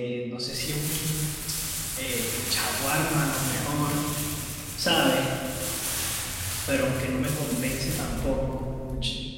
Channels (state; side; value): identical; both; correlation 1.00